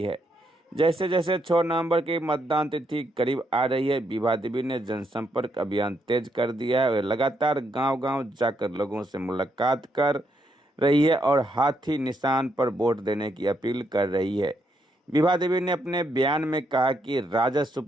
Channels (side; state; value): both; normal; correlation 0.77